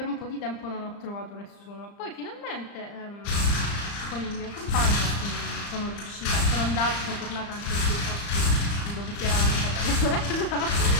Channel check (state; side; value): late; right; 35 ms